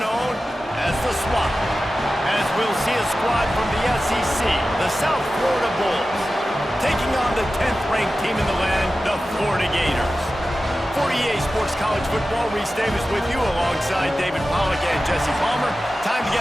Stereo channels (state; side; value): normal; both; correlation 0.94